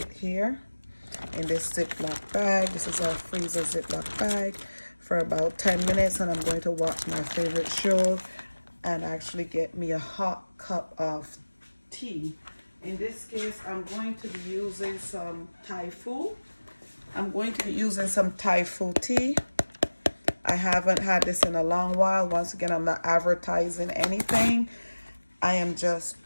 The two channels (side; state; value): both; inverted; correlation -1.00